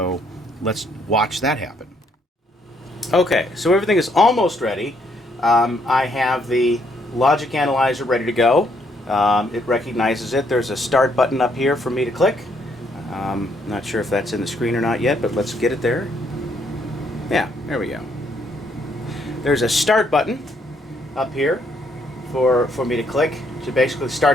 let's watch that happen. Okay, so everything is almost ready. I have the logic analyzer ready to go. It recognizes it. There's a start button up here for me to click. Not sure if that's in the screen or not yet, but let's get it there. Yeah, there we go. There's a start button up here for me to click. So basically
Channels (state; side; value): normal; both; correlation 0.71